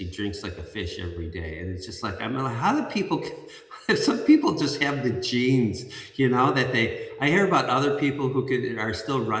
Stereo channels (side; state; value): both; identical; correlation 1.00